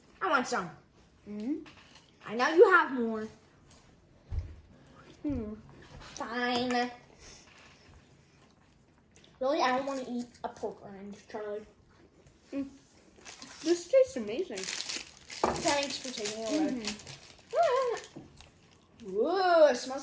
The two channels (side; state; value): both; identical; correlation 1.00